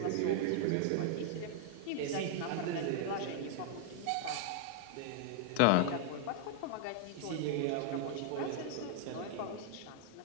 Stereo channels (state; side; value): different; both; correlation 0.00